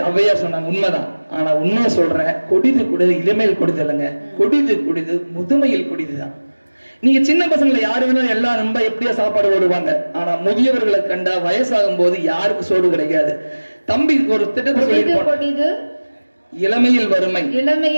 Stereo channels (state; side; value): inverted; both; correlation -1.00